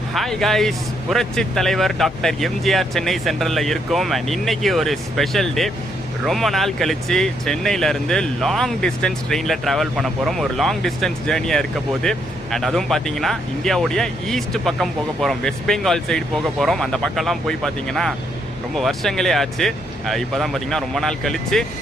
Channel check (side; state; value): both; normal; correlation 0.74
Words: ஹாய் காய்ஸ், புரட்சி தலைவர் டாக்டர் எம்ஜிஆர் சென்னை சென்ட்ரலில் இருக்கோம். அண்ட் இன்னைக்கு ஒரு ஸ்பெஷல் டே. ரொம்ப நாள் கழித்து சென்னையிலேருந்து லாங் டிஸ்டன்ஸ் ட்ரெயினில் ட்ராவல் பண்ண போகிறோம். ஒரு லாங் டிஸ்டன்ஸ் ஜேர்னியாக இருக்க போது. அண்ட் அதுவும் பார்த்தீங்கன்னா இந்தியாவுடைய ஈஸ்ட் பக்கம் போக போகிறோம். வெஸ்ட் பெங்கால் சைடு போக போகிறோம். அந்த பக்கம்லாம் போய் பார்த்தீங்கன்னா ரொம்ப வருஷங்களே ஆச்சு. இப்போ தான் பார்த்தீங்கன்னா ரொம்ப நாள் கழித்து